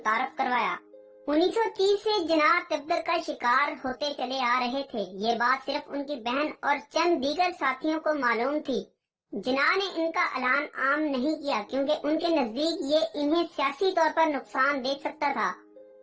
करवाया। 1930 से जिनाह तिब्बत का शिकार होते चले आ रहे थे। ये बात सिर्फ उनकी बहन और चंद दीगर साथियों को मालूम थी। जिनाह ने इनका ऐलान आम नहीं किया क्योंकि उनके नजदीक ये इन्हें सियासी तौर पर नुकसान दे सकता था।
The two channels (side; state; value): both; identical; correlation 1.00